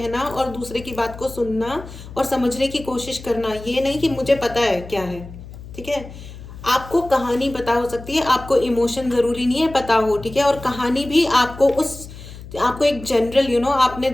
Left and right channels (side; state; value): left; noise; hum, 15 dB below the sound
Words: और दूसरे की बात को सुनना और समझने की कोशिश करना। ये नहीं कि मुझे पता है क्या है, ठीक है। आपको कहानी पता हो सकती है, आपको इमोशन जरूरी नहीं है पता हो, ठीक है। और कहानी भी आपको एक जनरल आपने